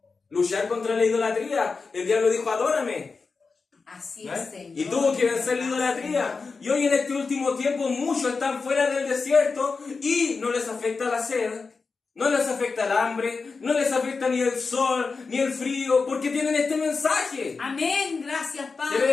Luchar contra la idolatría. El diablo dijo, adórame. Así es, Señor. Y tuvo que vencer la idolatría. Y hoy en este último tiempo muchos están fuera del desierto y no les afecta la sed, no les afecta el hambre, no les afecta ni el sol, ni el frío, porque tienen este mensaje. Amén, gracias, Padre.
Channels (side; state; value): right; quieter; 4.5 dB